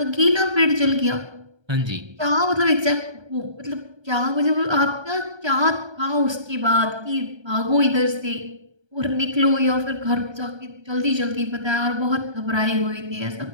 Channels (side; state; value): left; late; 1.3 ms